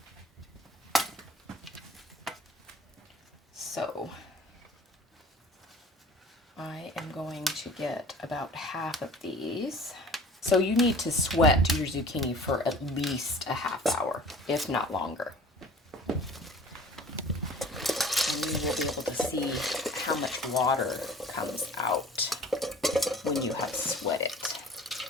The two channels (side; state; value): both; normal; correlation 0.45